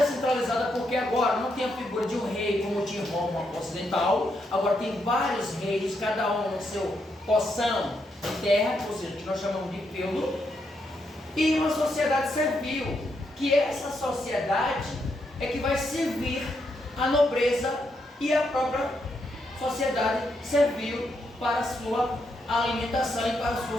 porque agora não tem a figura de um rei como tinha em Roma ocidental, agora tem vários reis, cada um no seu porção de terra, ou seja, que nós chamamos de feudo, e uma sociedade servil, que essa sociedade é que vai servir a nobreza e a própria sociedade servil para a sua alimentação e para a sua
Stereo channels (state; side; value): normal; both; correlation 0.79